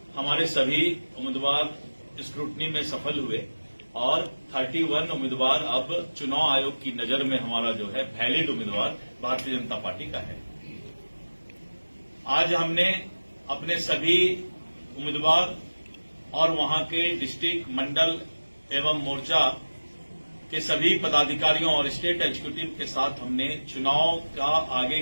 हमारे सभी उम्मीदवार स्क्रूटनी में सफल हुए और 31 उम्मीदवार अब चुनाव आयोग की नजर में हमारा जो है वैलिड उम्मीदवार भारतीय जनता पार्टी का है। आज हमने अपने सभी उम्मीदवार और वहां के डिस्ट्रिक्ट, मंडल एवं मोर्चा के सभी पदाधिकारियों और स्टेट एग्जीक्यूटिव के साथ हमने चुनाव का आगे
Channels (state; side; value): inverted; both; correlation -1.00